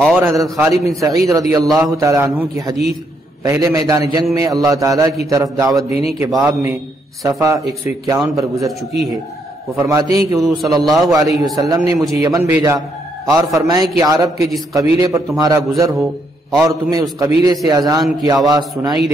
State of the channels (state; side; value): normal; both; correlation 0.75